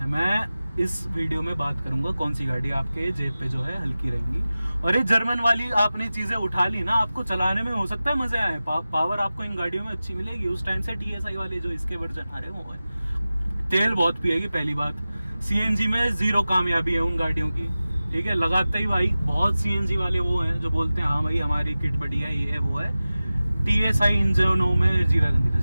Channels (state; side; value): inverted; both; correlation -0.96